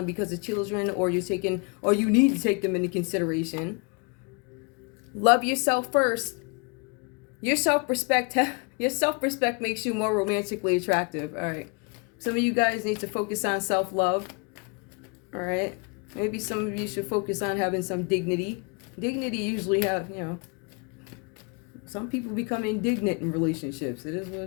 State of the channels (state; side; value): quieter; right; 33.2 dB